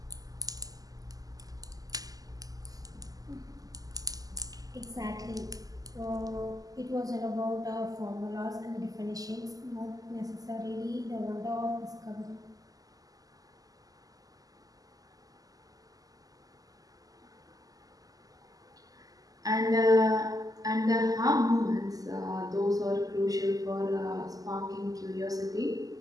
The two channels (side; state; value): left; late; 0.17 ms